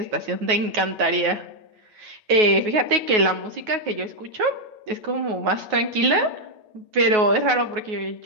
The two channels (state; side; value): late; left; 9.4 ms